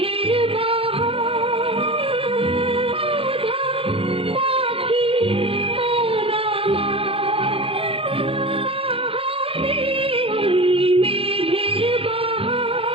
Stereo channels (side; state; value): left; late; 0.27 ms